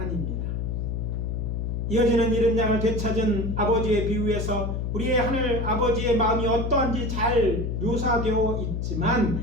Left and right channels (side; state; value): left; noise; hum, 2 dB below the sound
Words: 이어지는 잃은 양을 되찾은 아버지의 비유에서 우리의 하늘 아버지의 마음이 어떠한지 잘 묘사되어 있지만